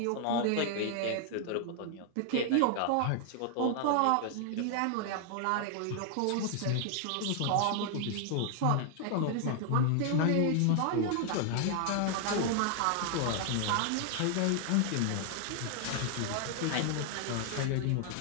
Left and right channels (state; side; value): different; both; correlation 0.00